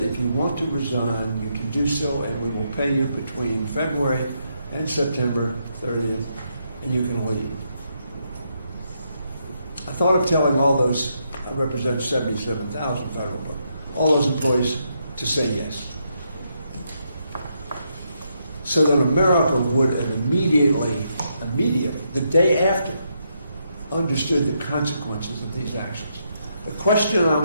if you want to resign, you can do so, and we will pay you between February and September 30th, and you can leave. I thought of telling all those, I represent 77,000 federal, but all those employees to say yes. So that America would have immediately, the day after, understood the consequences of these actions. The question I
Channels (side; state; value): both; inverted; correlation -0.79